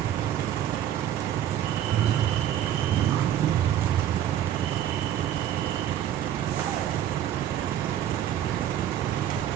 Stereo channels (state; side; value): quieter; left; 11.0 dB